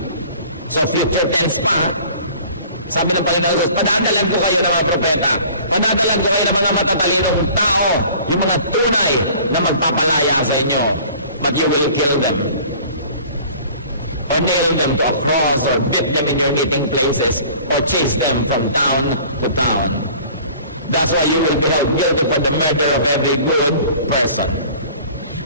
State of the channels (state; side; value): inverted; both; correlation -0.48